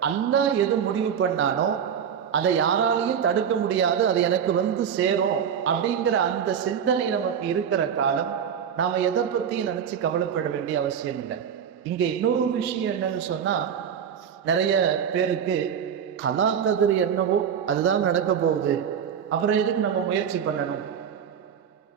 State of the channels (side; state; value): left; quieter; 8.0 dB